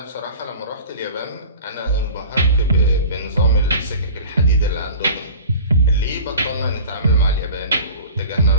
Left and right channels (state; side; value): inverted; both; correlation -0.39